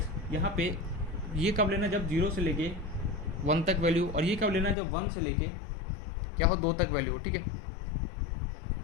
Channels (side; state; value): right; drops out; at 4.8 s